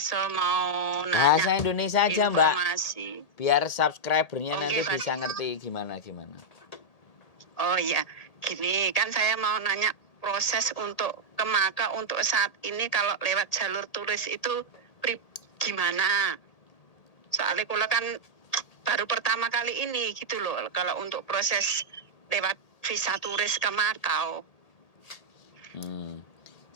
mau nanya Bahasa Indonesia aja, Mbak. informasi. Biar subscribernya Oh nanti nggih bisa ngerti gimana. Oh iya, gini kan saya mau nanya proses untuk ke Maka untuk saat ini kalau lewat jalur turis itu gimana? Soalnya kula kan baru pertama kali ini gitu loh kalau untuk proses lewat visa turis ke Makau.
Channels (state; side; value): late; right; 1.8 ms